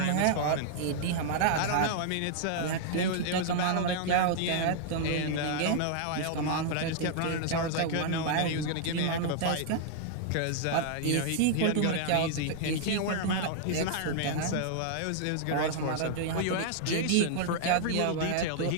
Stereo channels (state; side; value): different; both; correlation -0.01